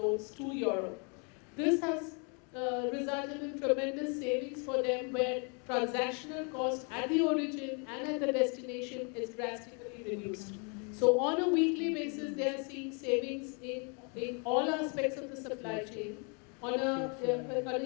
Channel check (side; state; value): right; quieter; 36.4 dB